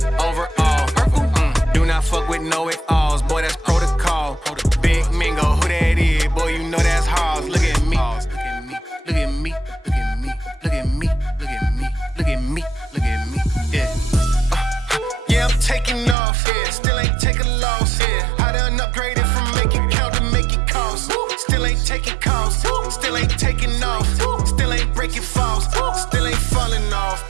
overall, purple. Do not fuck with know it alls, boy, that's protocol. Big Mingo, who that is? Boy, you know that's Halls. Look at me, look at me, look at me, look at me, look at me, look at me, look at me, yeah. Yeah, I'm taking off, yeah. Still ain't taking loss, yeah. I done upgraded from make it count to make it cost. Still ain't taking calls, still ain't taking off. Still ain't breaking falls, still ain't falling off.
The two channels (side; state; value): left; drops out; at 16.2 s